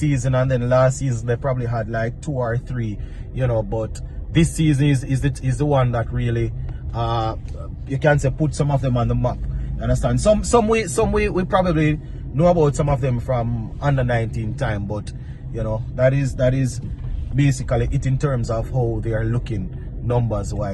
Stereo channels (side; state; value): both; identical; correlation 1.00